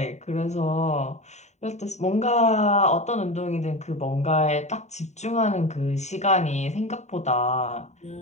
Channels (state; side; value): late; right; 0.33 ms